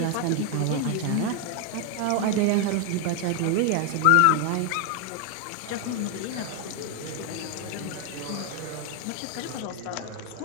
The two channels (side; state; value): both; different; correlation 0.00